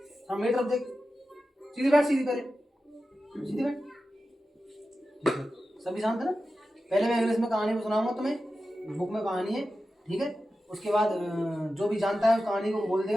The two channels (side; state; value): both; normal; correlation 0.92